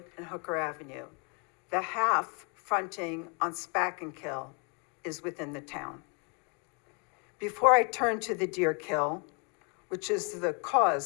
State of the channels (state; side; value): quieter; right; 35.3 dB